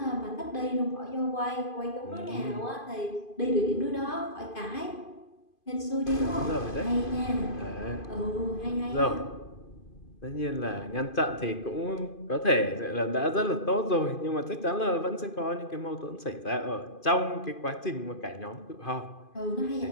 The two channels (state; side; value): late; right; 2.5 ms